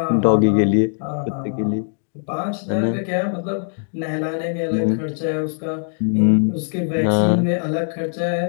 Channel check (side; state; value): right; silent; 65 dB below the other